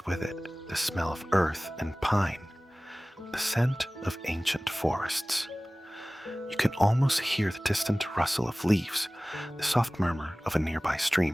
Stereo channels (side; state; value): both; normal; correlation 0.98